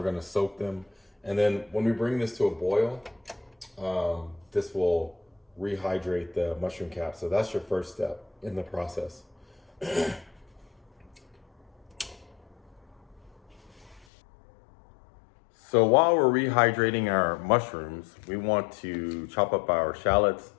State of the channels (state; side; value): drops out; right; at 14.1 s